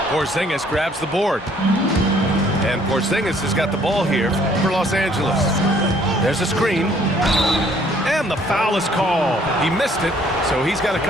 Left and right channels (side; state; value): both; normal; correlation 0.61